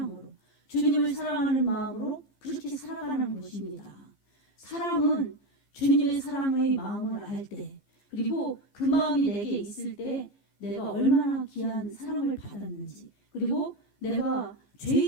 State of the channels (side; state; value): right; late; 15 ms